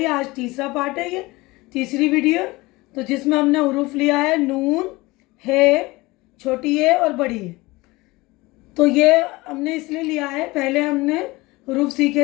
आज तीसरा पार्ट है, ये तीसरी वीडियो। तो जिसमें हमने हुरूफ लिया है नून, है, छोटी है और बड़ी है। तो ये हमने इसलिए लिया है, पहले हमने हुरूफ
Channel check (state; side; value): quieter; right; 21.6 dB